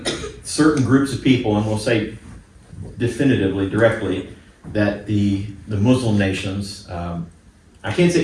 certain groups of people, and we'll say definitively, directly, that the Muslim nations, I can't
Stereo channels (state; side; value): identical; both; correlation 1.00